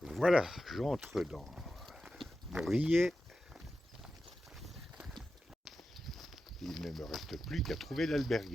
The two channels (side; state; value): both; normal; correlation 0.91